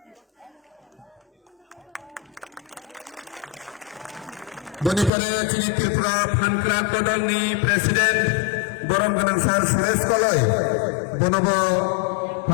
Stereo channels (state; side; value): drops out; right; at 5.1 s